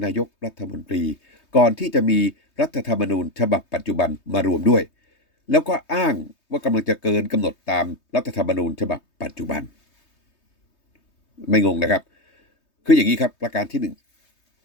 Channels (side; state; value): right; late; 3.2 ms